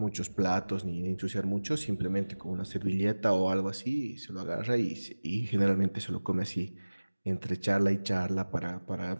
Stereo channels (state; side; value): inverted; both; correlation -1.00